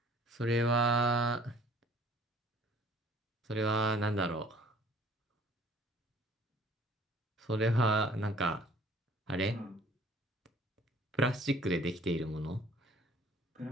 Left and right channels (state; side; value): normal; both; correlation 0.54